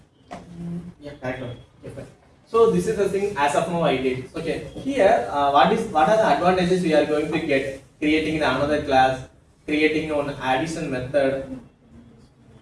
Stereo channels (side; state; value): both; identical; correlation 1.00